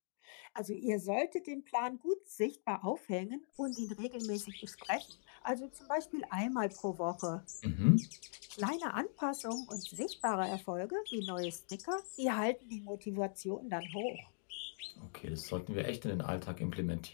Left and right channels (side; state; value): right; silent; digital silence